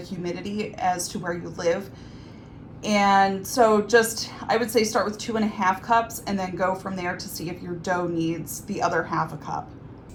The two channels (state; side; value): identical; both; correlation 1.00